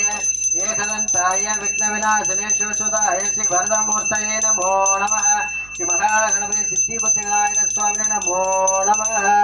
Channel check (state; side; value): noise; right; hum, 22 dB below the sound